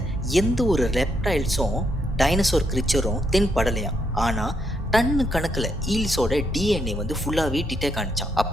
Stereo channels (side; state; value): both; normal; correlation 0.77